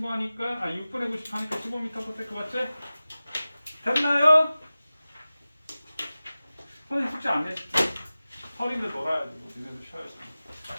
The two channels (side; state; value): both; inverted; correlation -0.97